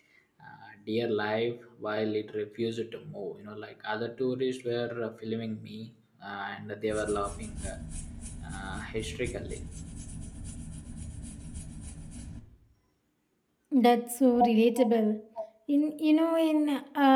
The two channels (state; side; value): identical; both; correlation 1.00